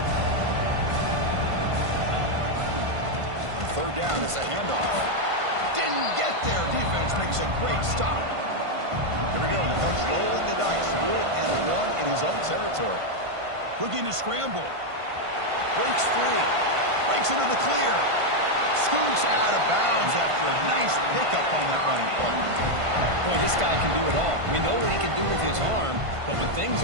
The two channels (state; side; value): late; left; 1.5 ms